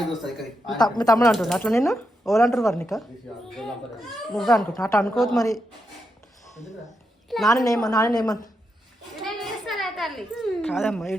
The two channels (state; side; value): normal; both; correlation 0.84